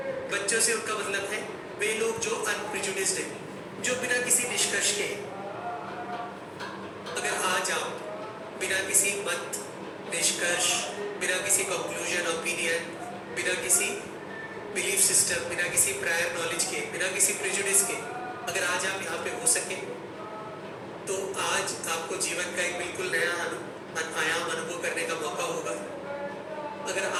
बच्चों से उनका मतलब है वे लोग जो अनप्रिजुडिस्ड हैं, जो बिना किसी निष्कर्ष के। अगर आज आप बिना किसी मत, निष्कर्ष, बिना किसी कंक्लूजन, ओपिनियन, बिना किसी बिलीफ सिस्टम, बिना किसी प्रायर नॉलेज के, बिना किसी प्रिजुडिस के, अगर आज आप यहाँ पे हो सके, तो आज आपको जीवन का एक बिल्कुल नया आयाम अनुभव करने का मौका होगा। अगर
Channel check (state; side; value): identical; both; correlation 1.00